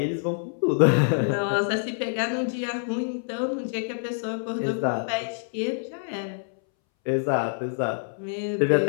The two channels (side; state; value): right; silent; 61 dB below the other